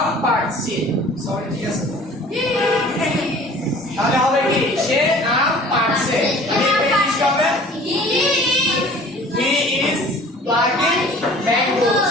পাড়ছে, সরি, ঠিক আছে, তাহলে হবে কি, সে আম পাড়ছে, ইংলিশ হবে, he is plucking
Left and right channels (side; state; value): both; normal; correlation 0.48